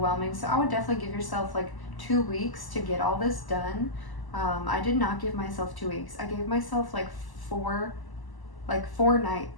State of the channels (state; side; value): late; right; 1.0 ms